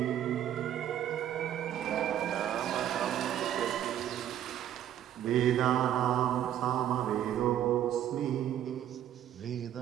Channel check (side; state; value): left; quieter; 11.1 dB